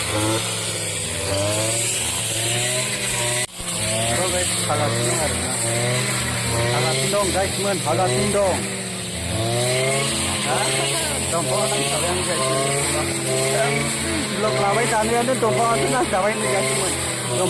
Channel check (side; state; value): right; noise; hum, 30 dB below the sound